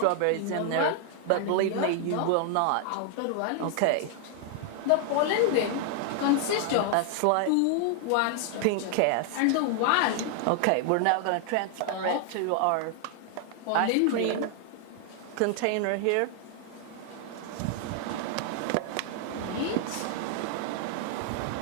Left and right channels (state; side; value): different; both; correlation 0.00